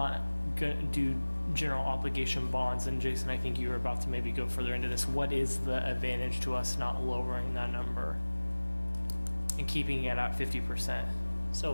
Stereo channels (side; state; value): both; inverted; correlation -1.00